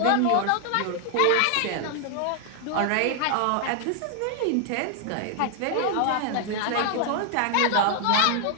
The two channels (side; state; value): both; different; correlation 0.00